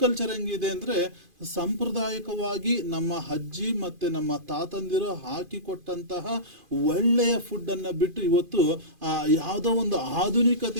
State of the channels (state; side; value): late; left; 2.5 ms